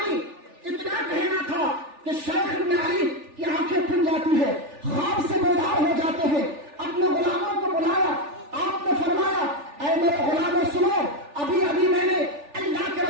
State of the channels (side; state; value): left; late; 3.4 ms